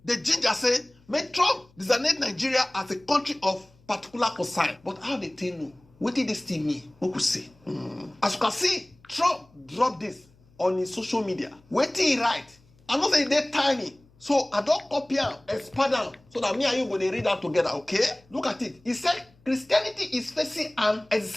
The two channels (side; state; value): left; noise; hum, 30 dB below the sound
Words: the ginger say, make Trump designate Nigeria as a country of particular concern. But how they tell you? What did this still mean? What could say? As you can see, Trump dropped this on his social media. What did he write? I'm not saying they're tiny. So I don't copy and expand them so that me and you going to read that together, okay? Look at it. He said Christianity is facing an